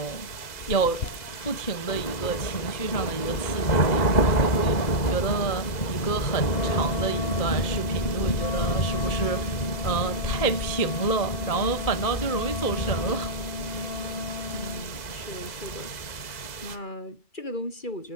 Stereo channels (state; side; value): late; right; 2.0 ms